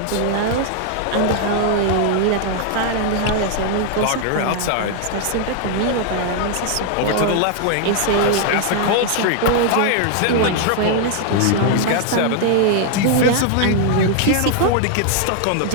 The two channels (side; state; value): both; different; correlation 0.00